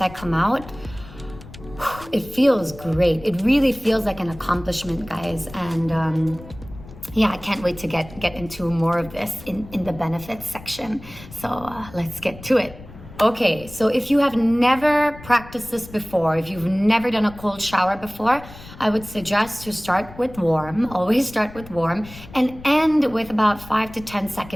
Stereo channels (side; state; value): left; noise; rumble, 17 dB below the sound